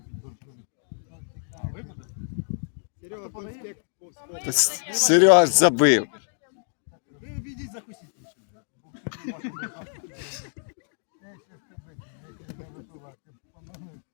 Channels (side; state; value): right; silent; digital silence